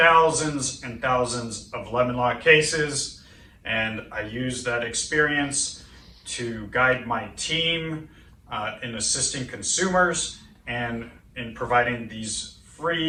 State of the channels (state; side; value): identical; both; correlation 1.00